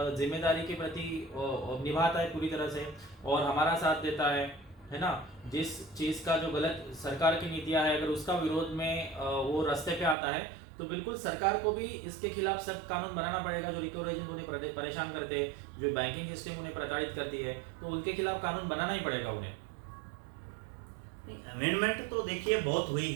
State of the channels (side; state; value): left; drops out; at 10.2 s